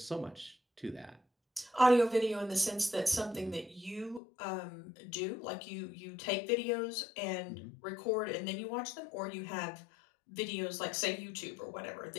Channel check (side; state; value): right; drops out; at 4.2 s